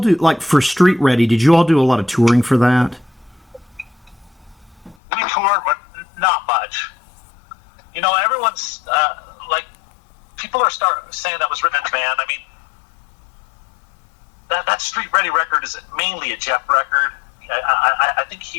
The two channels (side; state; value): right; drops out; at 5.0 s